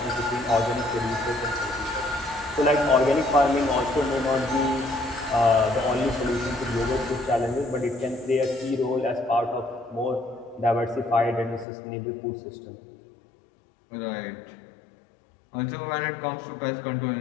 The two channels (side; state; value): right; drops out; at 11.7 s